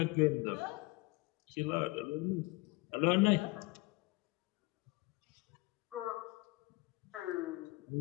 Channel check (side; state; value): right; quieter; 23.3 dB